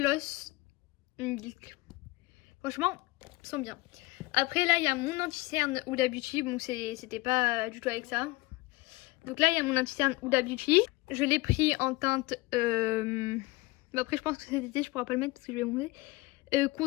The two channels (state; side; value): quieter; right; 21.9 dB